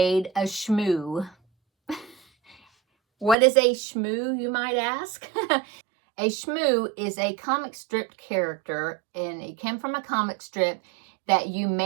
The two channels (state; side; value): drops out; left; at 3.4 s